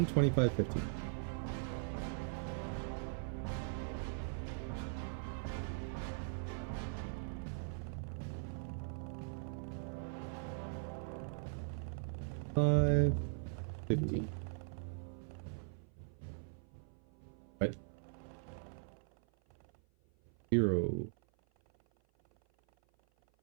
25, 15. Five, 15. What? 0.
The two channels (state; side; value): silent; left; 51 dB below the other